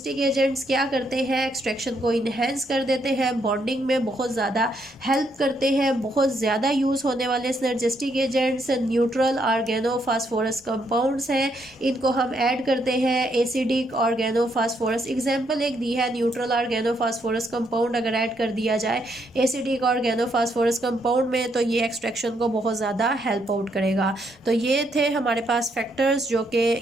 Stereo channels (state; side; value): normal; both; correlation 0.75